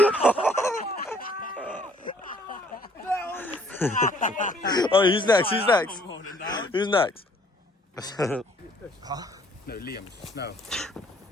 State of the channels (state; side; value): normal; both; correlation 0.61